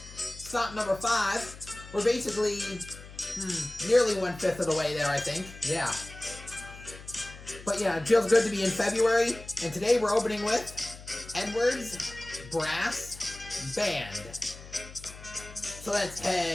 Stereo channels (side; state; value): left; noise; hum, 16 dB below the sound